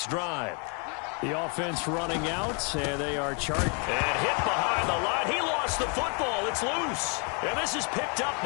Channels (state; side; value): quieter; right; 36.6 dB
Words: drive. The offense running out, and they are charged. And hit behind the line. He lost the football. It's loose. And this is picked up